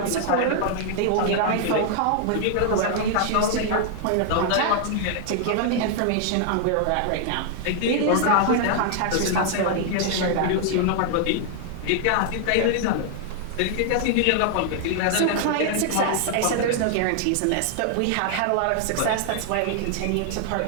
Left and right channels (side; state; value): both; different; correlation 0.00